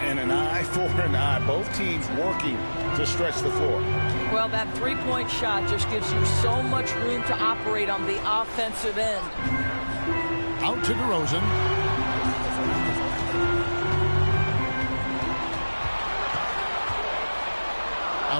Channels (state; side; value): inverted; both; correlation -1.00